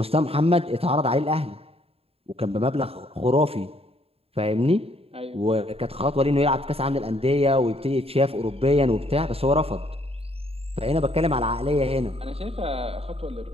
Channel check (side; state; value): left; late; 0.28 ms